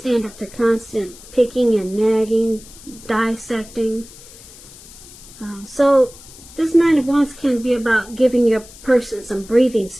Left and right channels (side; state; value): left; noise; hiss, 20 dB below the sound